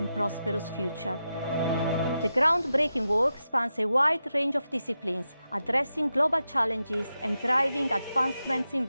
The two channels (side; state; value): both; inverted; correlation -0.89